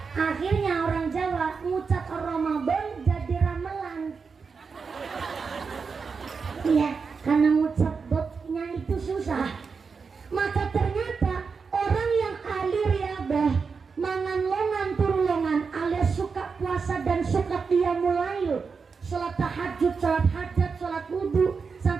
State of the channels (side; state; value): left; quieter; 5.2 dB